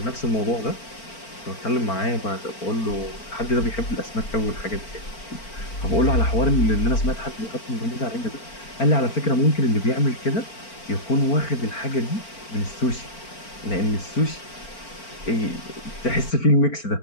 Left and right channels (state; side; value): late; right; 4.4 ms